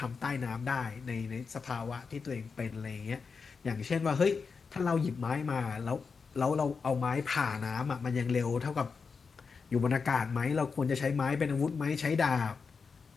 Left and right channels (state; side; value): quieter; right; 5.2 dB